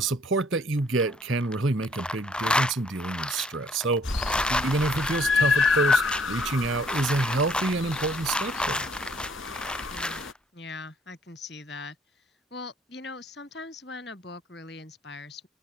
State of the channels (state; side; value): normal; both; correlation 0.63